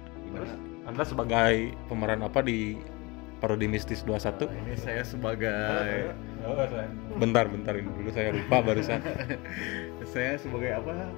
Terus Anda sebagai pemeran apa di Parodi Mistis 21? Ini saya sebagai Bentar ini dulu saya lupa barusan. saya sebagai apa?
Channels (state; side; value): quieter; right; 25.5 dB